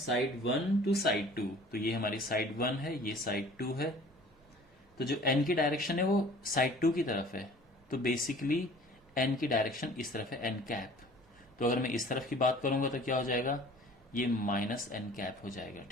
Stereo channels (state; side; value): normal; both; correlation 0.48